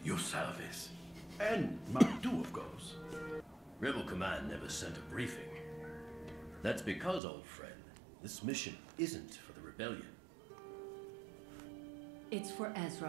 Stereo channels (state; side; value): drops out; left; at 7.2 s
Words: your service. And mine too, of course. Rebel Command never sent a briefing. That's because, old friend, this mission isn't for the rebellion. It's for